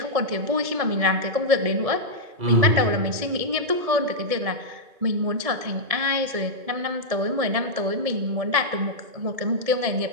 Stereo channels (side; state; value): left; late; 1.7 ms